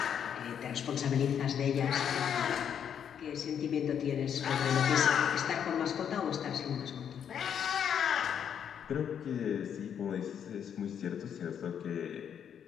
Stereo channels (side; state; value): right; quieter; 8.4 dB